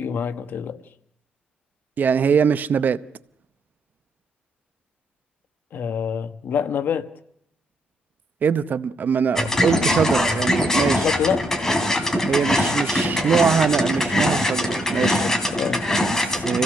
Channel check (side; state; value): both; normal; correlation 0.75